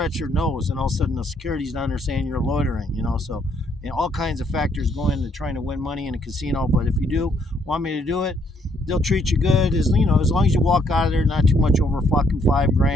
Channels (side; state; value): both; normal; correlation 0.70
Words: your nose, and all of a sudden the security's down there saying you're loitering. So all kinds of factors go into trying to win money in a casino. But if you do want me to do it, they'll treat you good as long as you walk out of there not too much over fucking